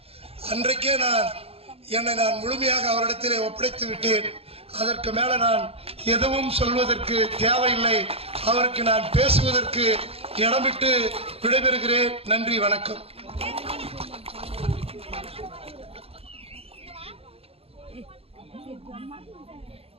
அன்றைக்கே என்னை நான் முழுமையாக அவரிடத்திலே ஒப்படைத்து விட்டேன். அதற்கு மேல நான் எதுவும் சொல்வதற்கு தேவையில்லை. அவருக்கு நான் பேசுவதற்கு இடமிட்டு விடைபெறுகிறேன். நன்றி, வணக்கம்.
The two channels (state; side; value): late; left; 0.28 ms